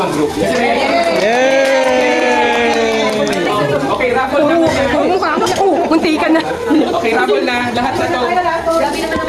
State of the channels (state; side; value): identical; both; correlation 1.00